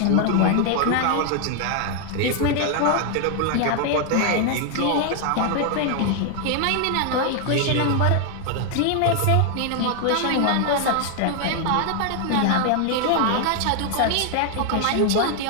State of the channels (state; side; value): different; both; correlation 0.00